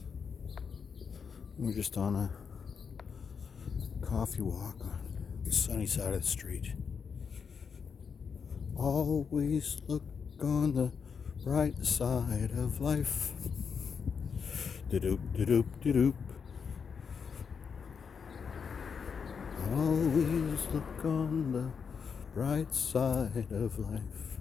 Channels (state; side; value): quieter; right; 6.2 dB